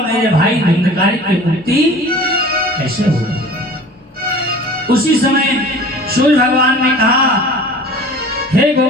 मेरे भाई धुंधकारी की मुक्ति कैसे होगी? उसी समय सूर्य भगवान ने कहा, हे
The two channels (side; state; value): both; normal; correlation 0.43